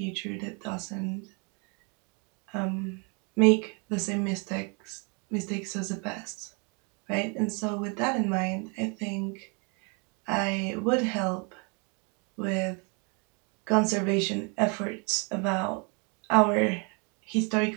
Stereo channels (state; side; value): quieter; left; 34.4 dB